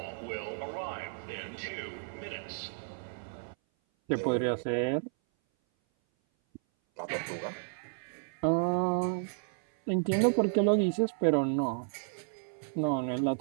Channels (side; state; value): left; silent; 56 dB below the other